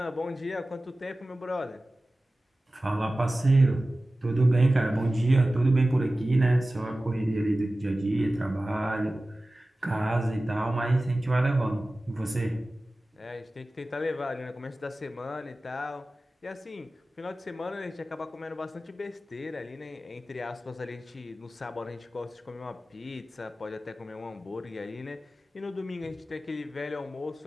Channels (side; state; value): both; normal; correlation 0.96